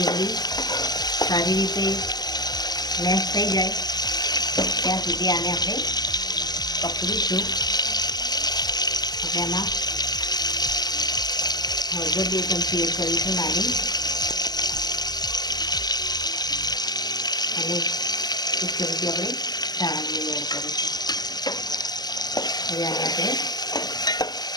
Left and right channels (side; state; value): right; late; 0.19 ms